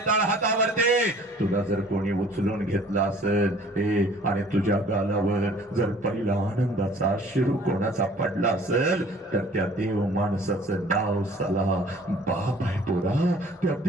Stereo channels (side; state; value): both; normal; correlation 0.52